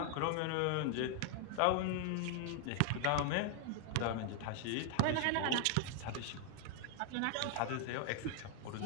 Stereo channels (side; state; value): both; different; correlation 0.00